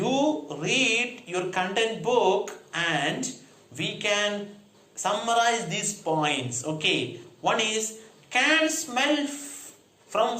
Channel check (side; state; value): both; identical; correlation 1.00